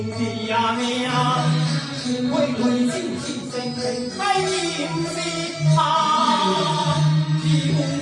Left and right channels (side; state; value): both; identical; correlation 1.00